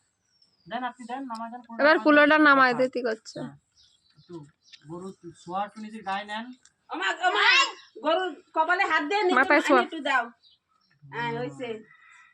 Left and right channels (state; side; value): identical; both; correlation 1.00